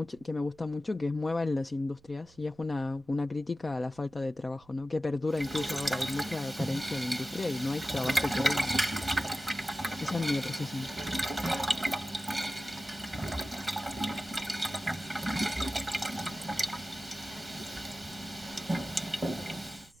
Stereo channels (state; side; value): noise; right; rumble, 27 dB below the sound